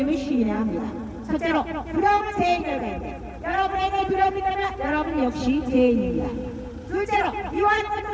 시인해야 합니다. 첫째로 두려움은 죄의 결과인데 여러분에게 두려움이 있다면 여러분 역시 죄인입니다. 둘째로 미워하는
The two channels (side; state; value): both; identical; correlation 1.00